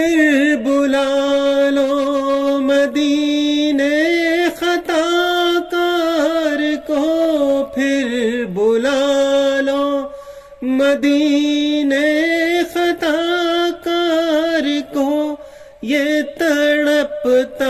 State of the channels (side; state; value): both; identical; correlation 1.00